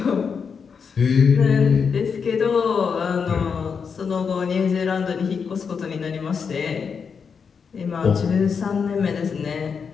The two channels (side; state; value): right; quieter; 6.1 dB